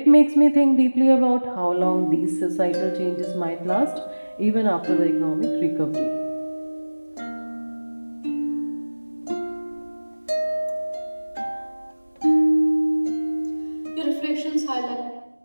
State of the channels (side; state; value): both; inverted; correlation -1.00